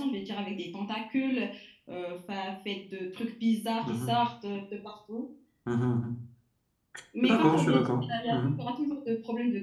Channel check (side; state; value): both; identical; correlation 1.00